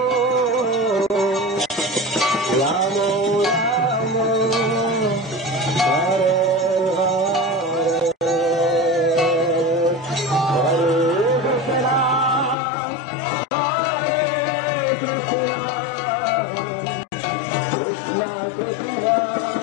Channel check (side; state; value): right; drops out; at 12.6 s